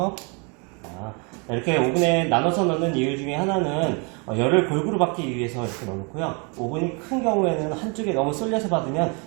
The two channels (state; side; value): quieter; left; 33.2 dB